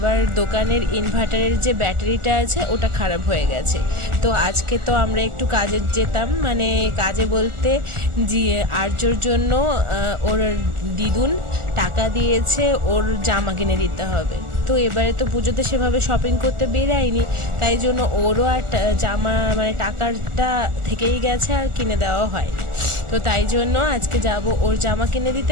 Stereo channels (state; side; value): late; left; 1.4 ms